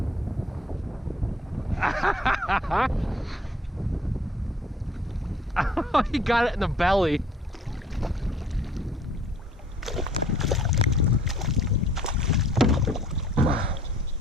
Oh, he got it in the belly.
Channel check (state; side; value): normal; both; correlation 0.57